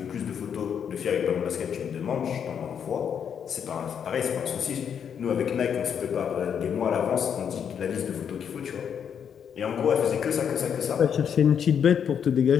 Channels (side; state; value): right; quieter; 7.9 dB